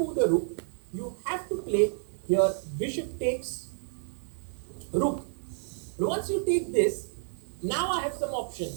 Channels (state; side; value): silent; left; digital silence